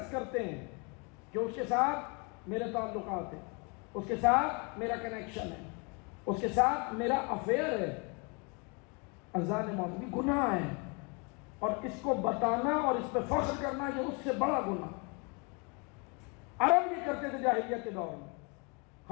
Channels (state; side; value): quieter; right; 32.5 dB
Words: کرتے ہیں کہ اس کے ساتھ میرے تعلقات ہیں، اس کے ساتھ میرا کنیکشن ہے، اس کے ساتھ میرا افیئر ہے، اذان موت بھی گناہ ہے، اور اس کو بتانا اور اس پہ فخر کرنا یہ اس سے بڑا گناہ۔ عرب یہ کرتے تھے جاہلیت کے دور میں،